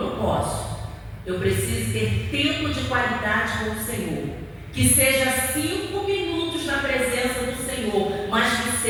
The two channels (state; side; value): identical; both; correlation 1.00